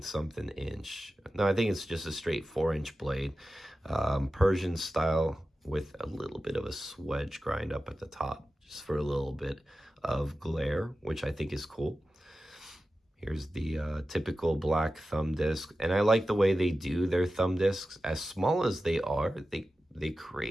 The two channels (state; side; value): normal; both; correlation 0.94